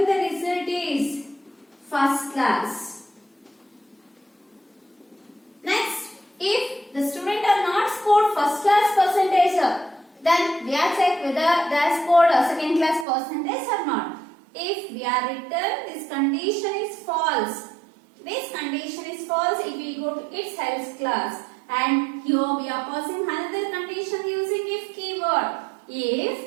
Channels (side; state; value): left; drops out; at 13.1 s